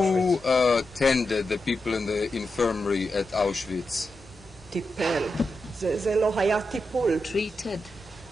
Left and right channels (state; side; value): normal; both; correlation 0.88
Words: tended the people in the infirmary at Auschwitz? טיפל. זה לא היה טיפול. Treated.